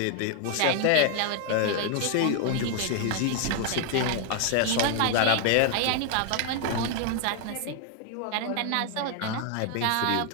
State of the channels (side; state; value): both; different; correlation 0.00